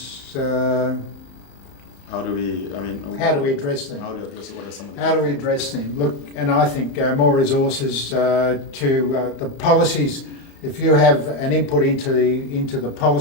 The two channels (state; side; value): late; right; 35 ms